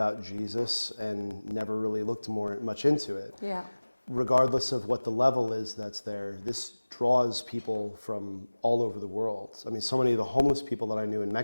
Jesus and never really looked much into it. Yeah. Regardless of what the level is that's there, this draws people from all over the world. I mean, so many of the homeless people that I knew in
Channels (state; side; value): inverted; both; correlation -1.00